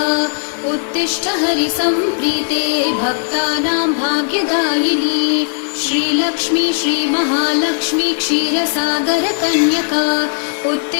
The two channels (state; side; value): silent; right; digital silence